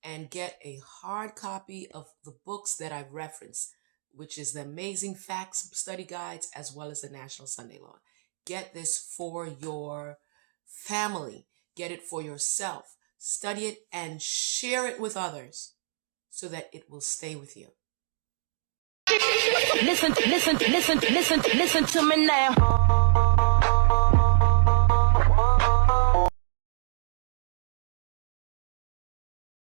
and get a hard copy of the books that I've referenced, which is the Amazing Facts Study Guides as well as the National Sunday Law. Get this for your family. Get it for yourself. Study it and share it with others so that it will stay with you. Listen to me now.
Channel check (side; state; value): left; silent; digital silence